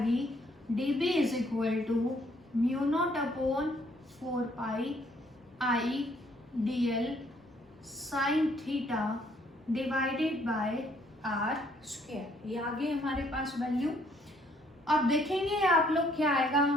dB is equal to μ0/4π I dl sine theta divided by r²। ये आ गई हमारे पास वैल्यू। अब देखेंगे आप लोग क्या आएगा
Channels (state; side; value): normal; both; correlation 0.66